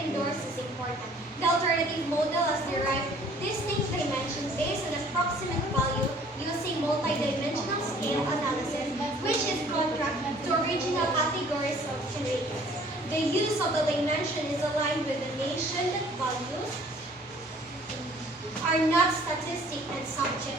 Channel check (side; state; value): both; normal; correlation 0.55